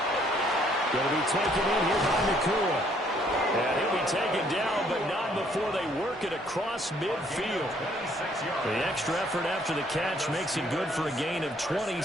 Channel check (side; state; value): both; normal; correlation 0.65